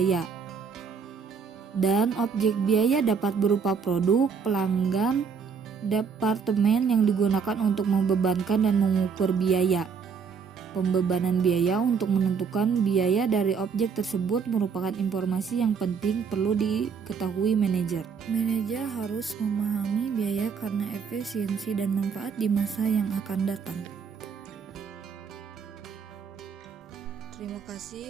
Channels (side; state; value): left; quieter; 6.1 dB